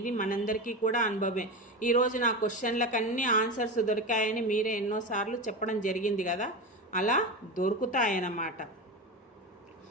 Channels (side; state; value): both; normal; correlation 0.22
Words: మనందరికీ కూడా అనుభవమే. ఈరోజు నా క్వశ్చన్లకు అన్ని ఆన్సర్స్ దొరికాయని మీరే ఎన్నోసార్లు చెప్పడం జరిగింది కదా, అలా దొరుకుతాయన్నమాట.